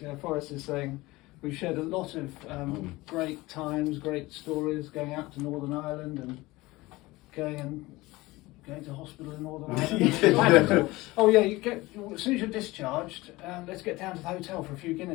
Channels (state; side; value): quieter; right; 20.4 dB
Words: Forrest is saying, we've shared a lot of great times, great stories, going out to Northern Ireland and going to hospital in Northern Ireland. Oh yeah, as soon as you're discharged, let's get down to the hotel for a few